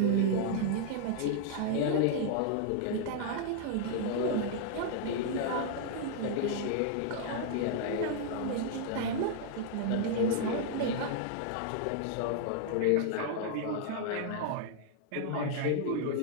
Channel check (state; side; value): different; both; correlation -0.01